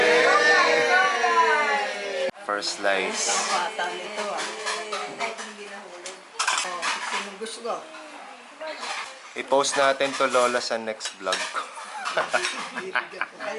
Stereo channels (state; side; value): identical; both; correlation 1.00